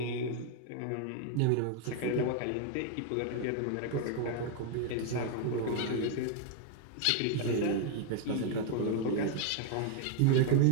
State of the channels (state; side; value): different; both; correlation 0.00